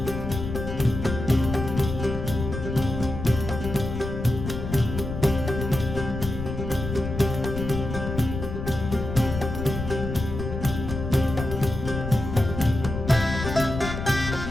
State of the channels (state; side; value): noise; left; rumble, 6 dB below the sound